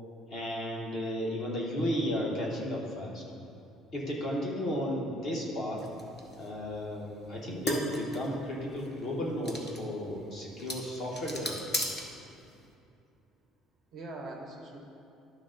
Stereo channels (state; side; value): normal; both; correlation 0.60